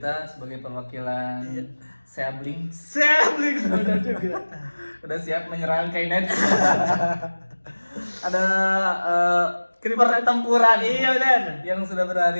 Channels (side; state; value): both; inverted; correlation -1.00